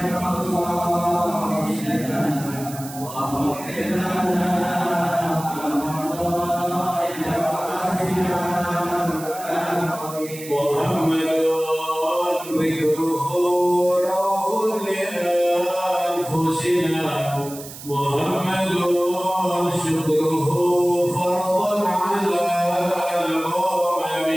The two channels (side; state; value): right; noise; hiss, 14 dB below the sound